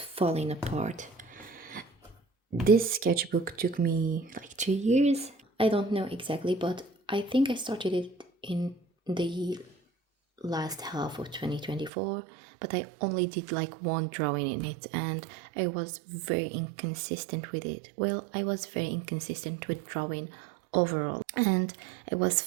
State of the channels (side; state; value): left; drops out; at 11.9 s